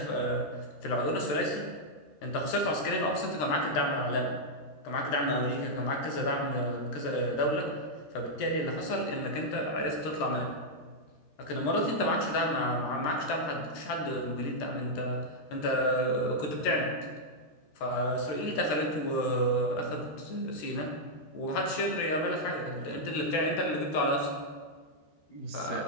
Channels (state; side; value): late; right; 13 ms